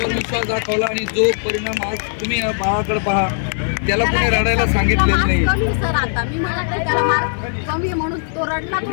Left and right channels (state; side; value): silent; right; 67 dB below the other